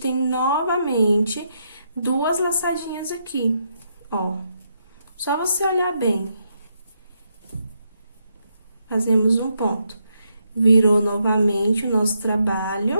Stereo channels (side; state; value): both; inverted; correlation -0.79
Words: novamente 2 laçadinhas aqui, ó. Só você olhar bem. Fazemos um ponto. Virou novamente o nosso